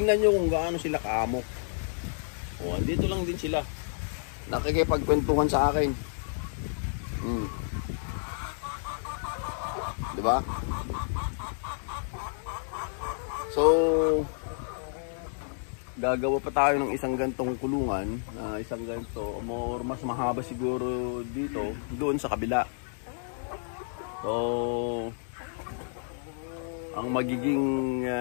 nyo kung gaano sila kaamok. O, andito lang din sila. Nakikipagkwentuhan sa akin. Diba? So, gagawa pa tayo ng isang gantong kulungan. Isang ganto, or mas mahaba siguro dito, doon sa kabila. So, ang magiging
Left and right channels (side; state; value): right; silent; digital silence